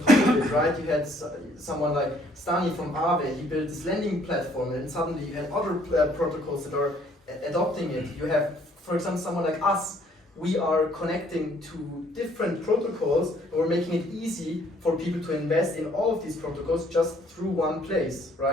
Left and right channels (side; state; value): both; normal; correlation 0.63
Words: top of it, right? You had someone like Stani from Aave, he built this lending platform, and suddenly you had other protocols that are adopting it. You have, for example, someone like us. We are connecting to different protocols, and we're making it easy for people to invest in all of these protocols just through one place,